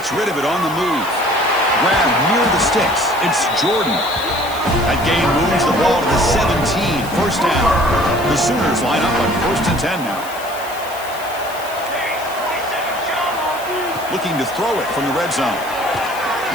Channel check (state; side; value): noise; left; hiss, 15 dB below the sound